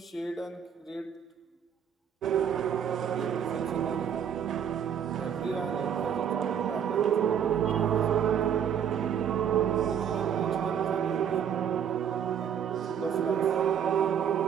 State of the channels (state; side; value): quieter; left; 8.4 dB